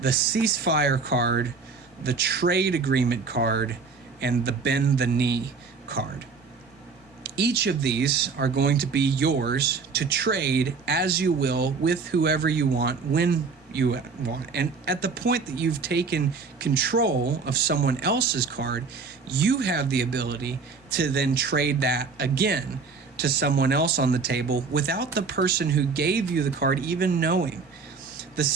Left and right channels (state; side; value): quieter; left; 4.8 dB